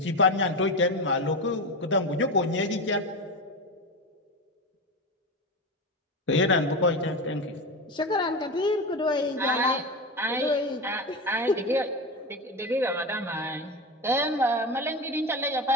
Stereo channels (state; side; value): normal; both; correlation 0.21